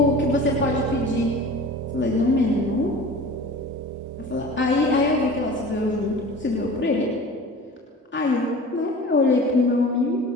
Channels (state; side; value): normal; both; correlation 0.39